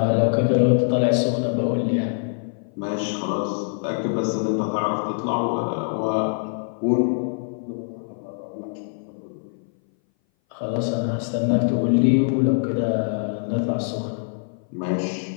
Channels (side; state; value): right; silent; 59 dB below the other